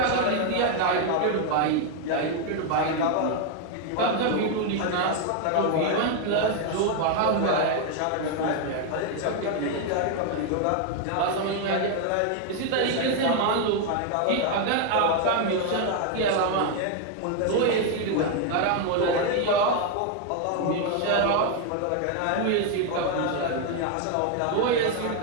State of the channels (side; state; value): both; different; correlation 0.01